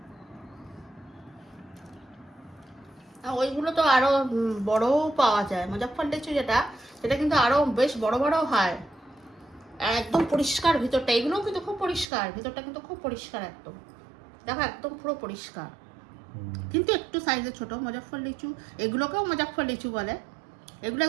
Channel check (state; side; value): drops out; left; at 12.1 s